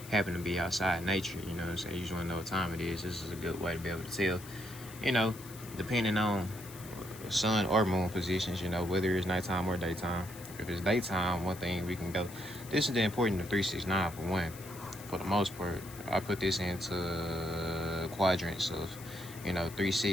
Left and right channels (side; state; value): left; noise; hiss, 16 dB below the sound